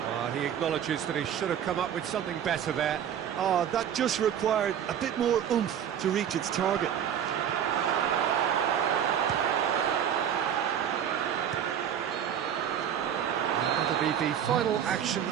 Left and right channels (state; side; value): quieter; left; 9.2 dB